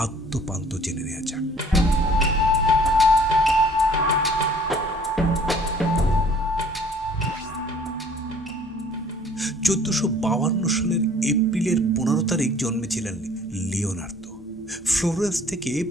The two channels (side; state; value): both; normal; correlation 0.54